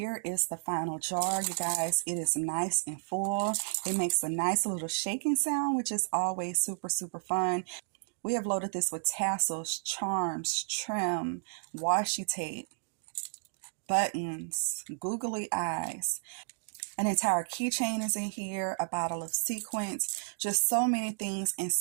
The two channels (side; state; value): left; silent; digital silence